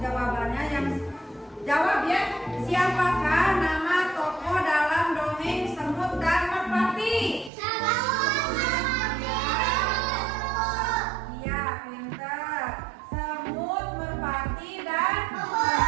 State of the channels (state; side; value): drops out; left; at 7.5 s